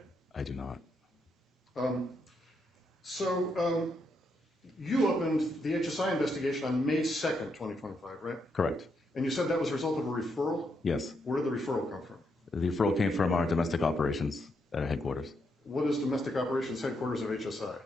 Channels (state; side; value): normal; both; correlation 0.79